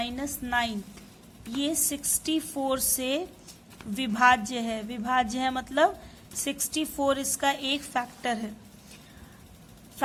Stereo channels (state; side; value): identical; both; correlation 1.00